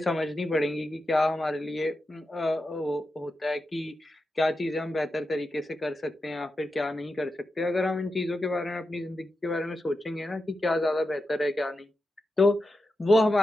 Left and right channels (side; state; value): both; normal; correlation 0.89